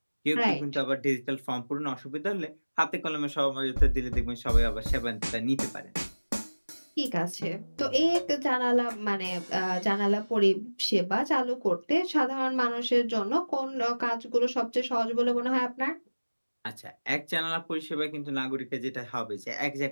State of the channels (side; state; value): both; inverted; correlation -1.00